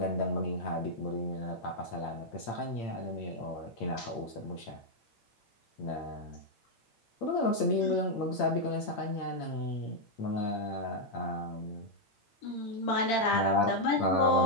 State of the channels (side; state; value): right; late; 8.8 ms